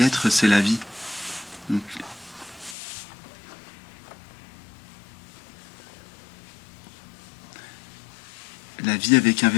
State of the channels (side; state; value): right; drops out; at 2.8 s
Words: c'est la vie. Donc, la vie avec un